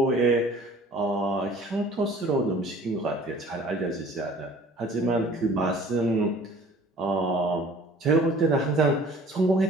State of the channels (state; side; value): normal; both; correlation 0.50